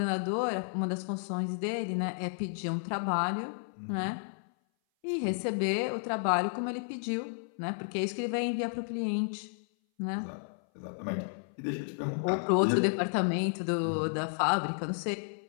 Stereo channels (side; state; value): right; silent; 56 dB below the other